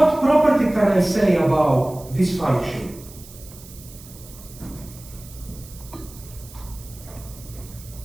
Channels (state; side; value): noise; right; hiss, 19 dB below the sound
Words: property can I say about this function?